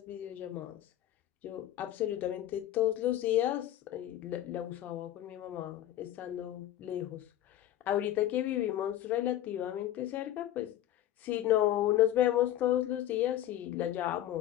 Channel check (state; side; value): quieter; right; 12.8 dB